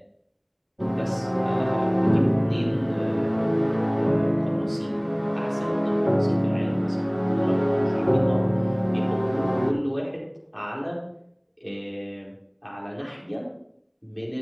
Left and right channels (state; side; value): identical; both; correlation 1.00